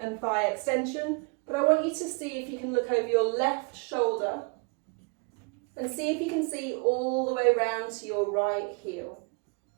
thigh extension, but I want you to see if you can look over your left shoulder and see if you can see all the way around to your right heel.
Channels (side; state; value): left; quieter; 32.1 dB